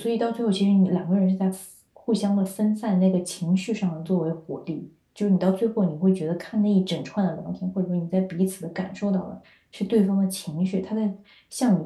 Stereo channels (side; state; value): both; identical; correlation 1.00